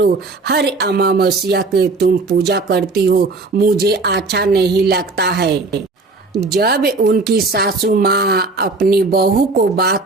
हर अमावस्या के तुम पूजा करती हो, मुझे अच्छा नहीं लगता है। जब उनकी सासू माँ अपनी बहू को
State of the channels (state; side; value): quieter; left; 3.6 dB